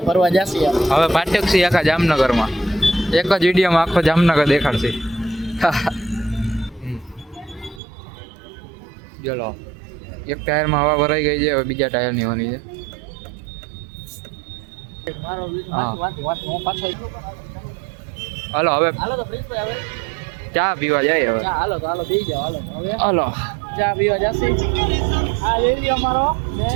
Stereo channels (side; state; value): left; drops out; at 7.8 s